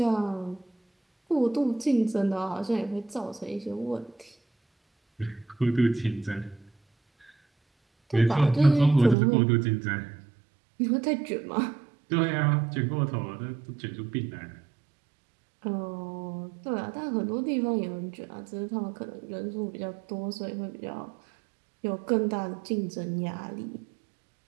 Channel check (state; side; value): drops out; left; at 9.2 s